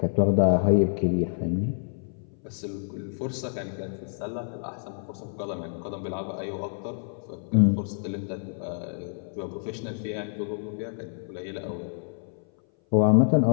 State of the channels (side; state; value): right; silent; 57 dB below the other